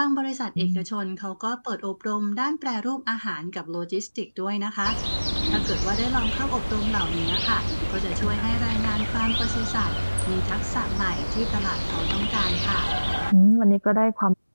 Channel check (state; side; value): inverted; both; correlation -1.00